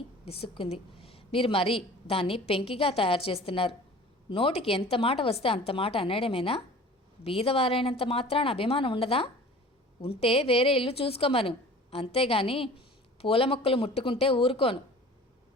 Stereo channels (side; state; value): both; normal; correlation 0.43